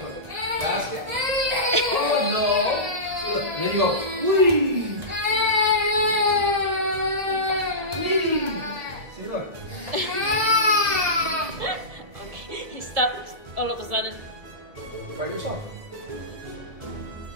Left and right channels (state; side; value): late; left; 2.0 ms